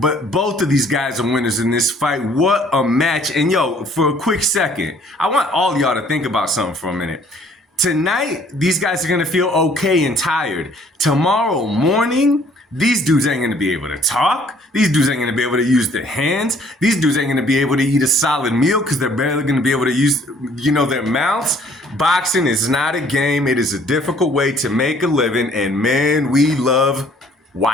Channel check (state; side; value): normal; both; correlation 0.59